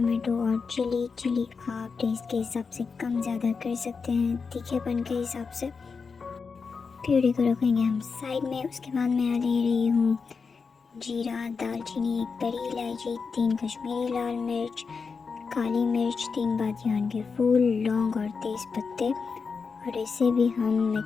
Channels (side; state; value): right; quieter; 5.1 dB